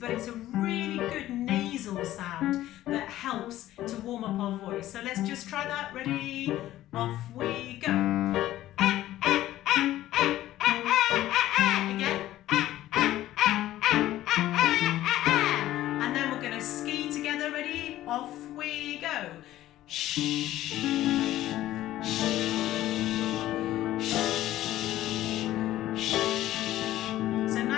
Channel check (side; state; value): right; quieter; 14.3 dB